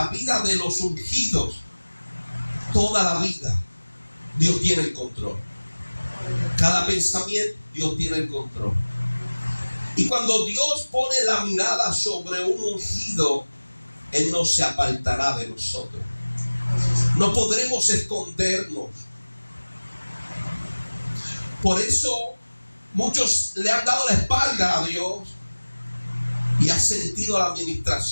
vida de los ungidos, toda la vida, Dios tiene el control. Cada pensamiento, Dios tiene el control. Y cuando Dios pone la mirada sobre un ungido, Él no se apartará de nosotros. No podremos escondernos. Por eso muchos le han dado la espalda a Dios y han sentido la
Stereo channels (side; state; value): both; inverted; correlation -1.00